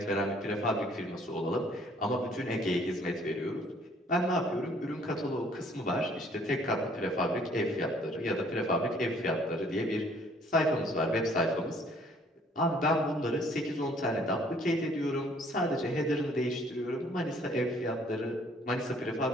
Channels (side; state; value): both; normal; correlation 0.60